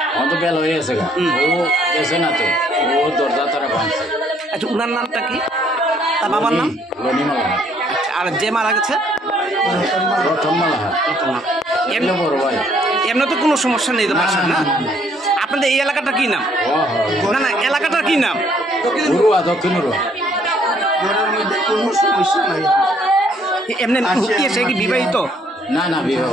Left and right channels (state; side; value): normal; both; correlation 0.65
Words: আমার তো বেল হয়ে গেছে ও গেছে না তো ও দরজা তারা ভাঙছে। আচ্ছা উনার নামটা কি তার বাবার নাম রনিমালা আচ্ছা আর যে মারা গেছে রতনমালা এমনি বড় ভাই এমনি তো কোনো সমস্যা নেই তো বাসার না আপনাদের এই এলাকাটা কি নাম না না এলাকাটা কি নাম দক্ষিণ ঘরের মধ্যে কোনো সমস্যা নাই এমনি সে কি বিবাহিত না না বিবাহ